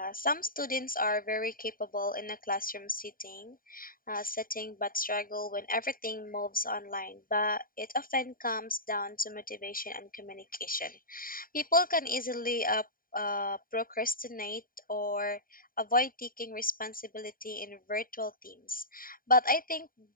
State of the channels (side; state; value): right; late; 0.41 ms